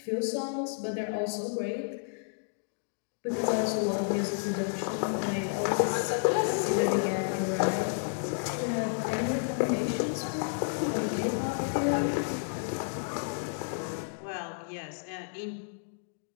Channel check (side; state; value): right; silent; digital silence